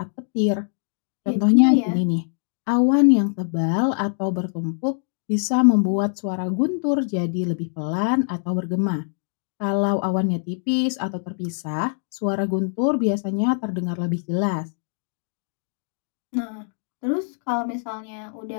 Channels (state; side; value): silent; right; digital silence